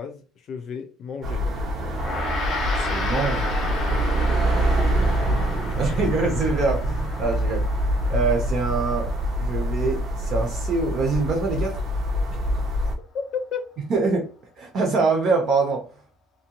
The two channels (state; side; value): normal; both; correlation 0.65